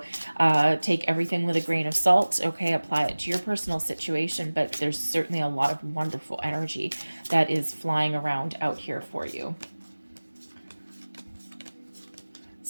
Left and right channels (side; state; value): both; inverted; correlation -1.00